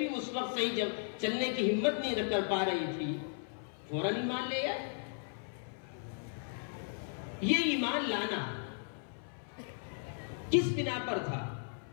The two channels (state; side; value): silent; right; 54 dB below the other